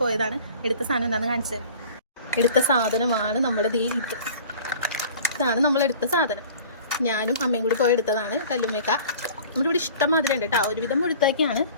പോയതാണ്. എടുത്ത സാധനം എന്താണെന്ന് കാണിച്ചു തരാം. എടുത്ത സാധനമാണ് നമ്മുടെ ഇതാണ് നമ്മളെടുത്ത സാധനം. ഞാനും അമ്മയും കൂടി പോയി എടുത്തതാണ്. കല്ലുമ്മേക്ക നമ്മുടെ ഇവിടെ ഇഷ്ടം മാതിരി ഉണ്ട് കേട്ടോ. ഒരുവിധം മുഴുത്തേക്കാണ്.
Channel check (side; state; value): both; inverted; correlation -0.45